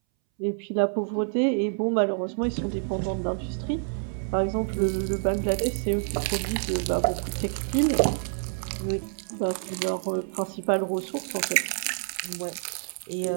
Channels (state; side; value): silent; left; 60 dB below the other